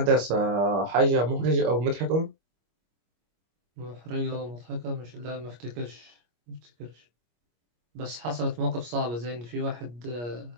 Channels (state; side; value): late; left; 25 ms